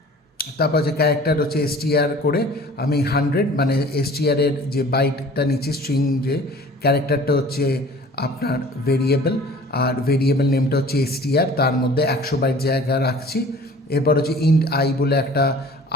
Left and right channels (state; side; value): normal; both; correlation 0.47